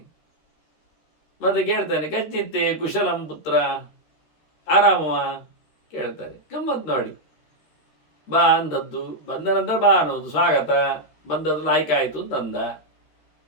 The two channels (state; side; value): late; right; 13 ms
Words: ಮತ್ತೆ ಕೇಳ್ತಾನೆ, ಕಚ್ಚಿತ್ತೆ ಕುಶಲಂ ಪುತ್ರ, ಆರಾಮವ ಕೇಳ್ತಾನೆ. ಗಮ್ಮತ್ ನೋಡಿ. ಬಾ ಅಂದದ್ದು, ಬಂದ ನಂತರ ಬಾ ಅನ್ನೋದು ಸ್ವಾಗತ. ಬಂದದ್ದು ಆಯ್ಕಾಯಿತು ಅಂತಂದ.